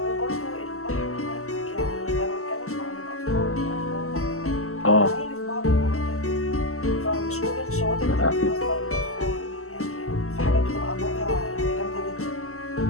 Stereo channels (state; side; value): late; right; 0.63 ms